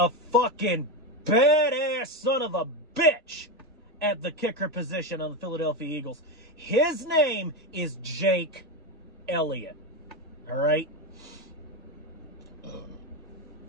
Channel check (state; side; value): normal; both; correlation 0.14